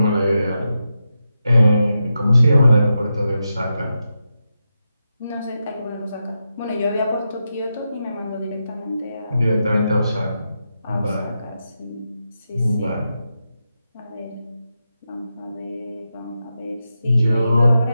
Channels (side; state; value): both; inverted; correlation -0.88